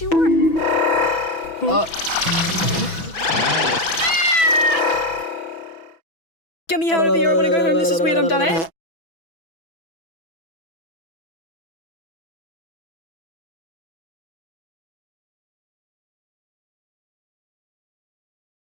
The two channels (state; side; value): late; right; 6.0 ms